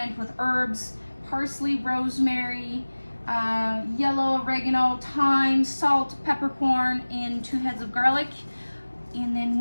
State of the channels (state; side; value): inverted; both; correlation -1.00